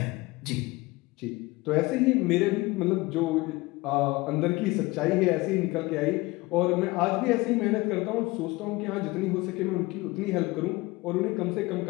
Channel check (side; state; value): right; quieter; 21.9 dB